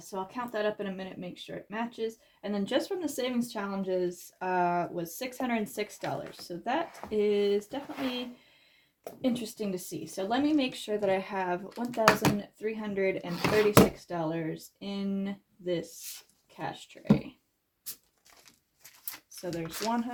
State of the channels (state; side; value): identical; both; correlation 1.00